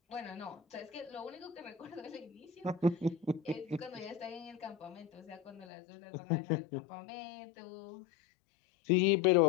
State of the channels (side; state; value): right; drops out; at 5.7 s